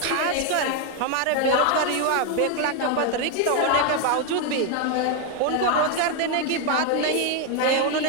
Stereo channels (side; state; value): both; different; correlation 0.01